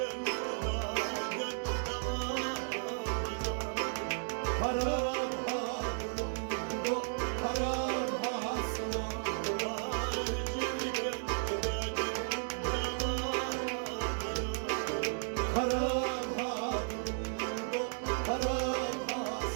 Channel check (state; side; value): silent; left; digital silence